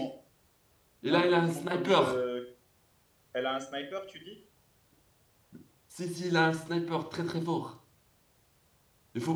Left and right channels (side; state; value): both; identical; correlation 1.00